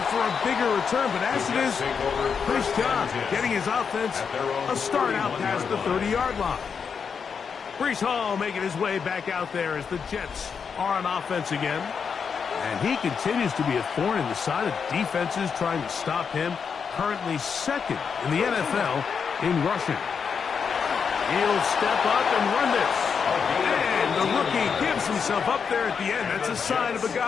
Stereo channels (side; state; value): right; quieter; 6.3 dB